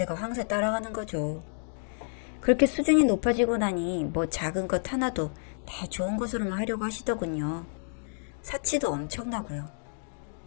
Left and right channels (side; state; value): right; silent; digital silence